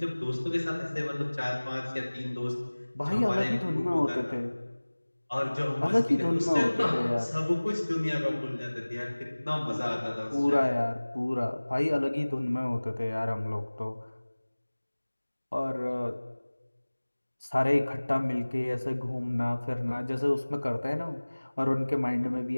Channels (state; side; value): inverted; both; correlation -1.00